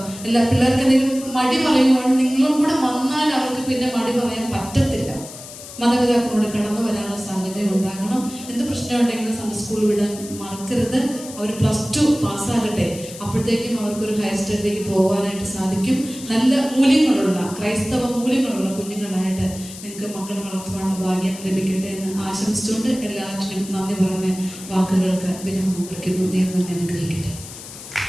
എല്ലാ പിള്ളേർക്ക് എന്തെങ്കിലും മടി പറയുവാണ്, നിങ്ങളും കൂടെ വന്നാൽ അവർക്ക് പിന്നെ മടി പറയാൻ പറ്റത്തില്ല. മാതാപിതാക്കളോട് കടന്നു വരാനുള്ള സാഹചര്യം ഉണ്ടാകണം. എന്ത് പ്രശ്നമുണ്ടെങ്കിലും സൺഡേ സ്കൂൾ വിടാൻ മറക്കരുത്. അവർ +2 പാസ്സാകട്ടെ, അപ്പോഴത്തേക്കും അവർക്കൊരു ഹയർ സ്റ്റഡിയിലേക്ക് പോകാനായിട്ട് സാധിക്കും. നല്ല മൂല്യങ്ങളുള്ള, ക്രൈസ്തവ മൂല്യങ്ങളുള്ള കുഞ്ഞുങ്ങളായിട്ട് നിങ്ങൾക്ക് മക്കളെ വളർത്തുവാനുള്ള ഭാഗ്യം ലഭിക്കട്ടെ എന്ന് ആശംസിച്ചുകൊണ്ട് എല്ലാറ്റിനും നന്ദി പറഞ്ഞ് വാക്കുകൾക്ക് വിരാമം കുറിക്കുന്നു. ദൈവം നമ്മെ അനുഗ്രഹിക്കട്ടെ.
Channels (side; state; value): left; noise; hiss, 14 dB below the sound